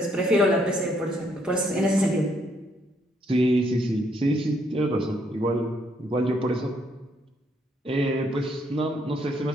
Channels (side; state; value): both; normal; correlation 0.71